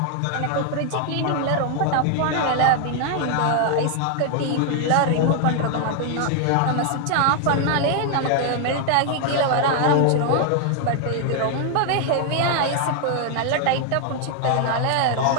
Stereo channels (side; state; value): both; different; correlation 0.00